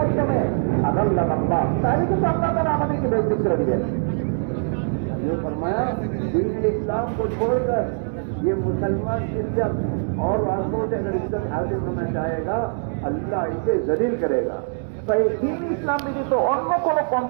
আদাল্লাহ আল্লাহ, তাহলে কিন্তু আল্লাহ তাআলা আমাদেরকে বেইজ্জত করে দিবেন। जो फरमाया दीन इस्लाम को छोड़कर ये मुसलमान इज्जत और वास्तव से अगर इज्जत हासिल करना चाहेगा अल्लाह इसे जलील करेगा। তাই দিন ইসলাম ব্যতীত অন্য কোন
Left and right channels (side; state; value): left; silent; digital silence